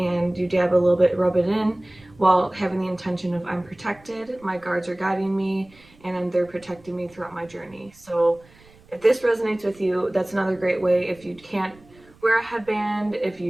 you dab a little bit, rub it in, while having the intention of I'm protected, my guards are guiding me, and they're protecting me throughout my journey. So if this resonates with you, that's another great way. If you can't wear a headband, if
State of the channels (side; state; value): right; noise; rumble, 27 dB below the sound